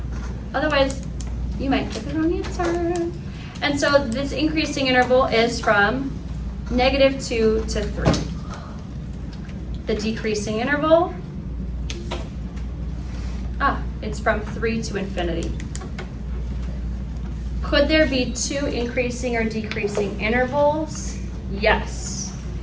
Otherwise, you might get the wrong answer. And so this increasing interval is from -2 to 3. The decreasing interval, it's from 3 to infinity. Could there be 2 increasing or decreasing intervals? Yes.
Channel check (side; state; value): both; identical; correlation 1.00